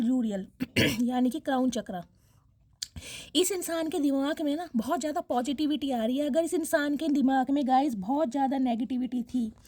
यूरियल यानी कि क्राउन चक्र। इस इंसान के दिमाग में ना बहुत ज़्यादा पॉजिटिविटी आ रही है। अगर इस इंसान के दिमाग में गाइस बहुत ज़्यादा नेगेटिविटी थी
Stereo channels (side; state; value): both; identical; correlation 1.00